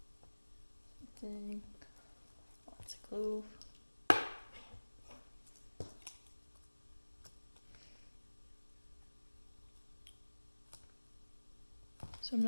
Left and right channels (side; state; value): both; inverted; correlation -1.00